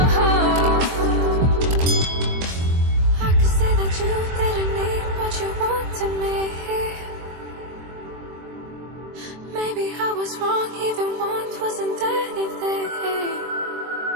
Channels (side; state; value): left; late; 23 ms